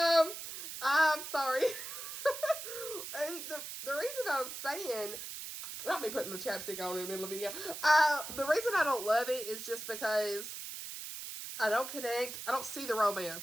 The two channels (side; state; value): right; noise; hiss, 8 dB below the sound